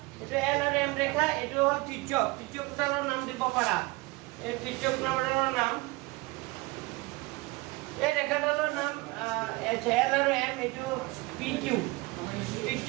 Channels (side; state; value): left; quieter; 23.4 dB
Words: এইটো এল আৰু এম ৰেখা এইটো হ'ল ত্ৰিজ্যক ত্ৰিজ্যকটালৰ নাম দিব পাৰা এই ত্ৰিজ্যকটালৰ নাম এই ৰেখাডালৰ নাম এল আৰু এম এইটো পি কিউ